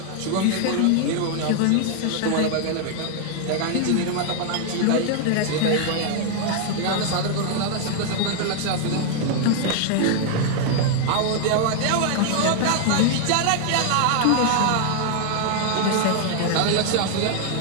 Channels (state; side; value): different; both; correlation 0.00